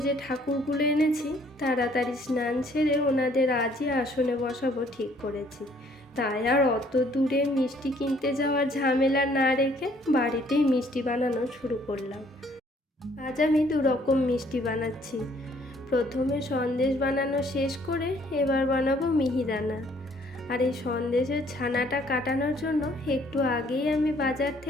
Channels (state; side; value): normal; both; correlation 0.62